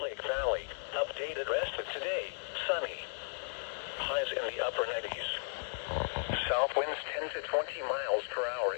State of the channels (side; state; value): right; silent; digital silence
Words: Lake Valley, updated rest of today, sunny. Highs in the upper 90s. South winds 10 to 20 miles per hour